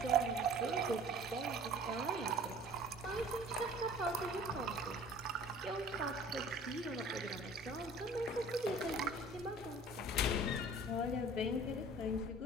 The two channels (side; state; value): both; normal; correlation 0.47